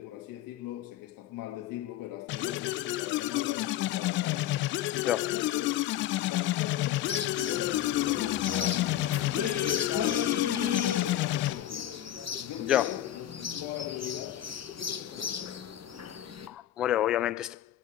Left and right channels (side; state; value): right; quieter; 12.4 dB